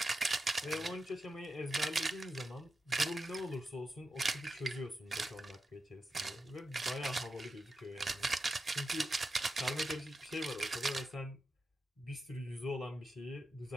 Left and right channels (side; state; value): both; normal; correlation 0.89